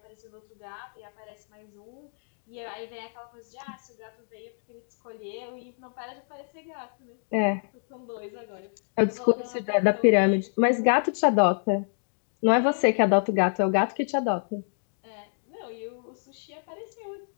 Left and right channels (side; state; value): right; silent; digital silence